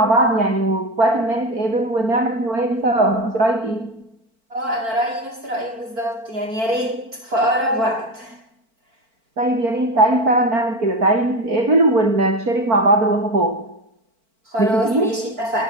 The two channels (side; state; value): left; late; 4.5 ms